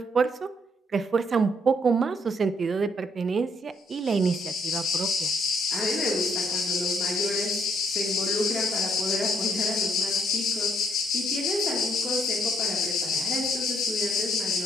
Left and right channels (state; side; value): normal; both; correlation 0.69